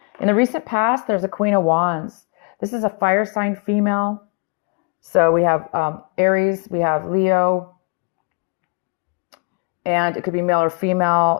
In the recent past, there's a Queen of Wands. This is a fire sign female. So we have Aries, we have Leo, and it could be male or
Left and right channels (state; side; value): quieter; right; 33.2 dB